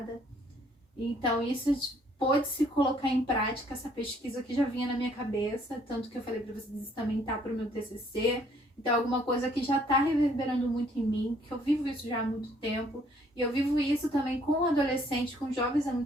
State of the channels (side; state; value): both; normal; correlation 0.63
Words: Então, isso pôde se colocar em prática, essa pesquisa que já vinha na minha cabeça, tanto que eu falei para vocês, isso também tá para o meu TCC. Então, alguma coisa que já está reverberando muito em mim, que eu vivo isso já há muito tempo. E eu vivo isso também com adolescentes, com jovens há